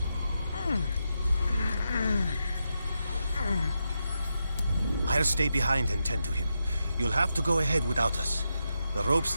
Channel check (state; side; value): inverted; both; correlation -0.86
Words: I'll stay behind and tend to him. You'll have to go ahead without us. The ropes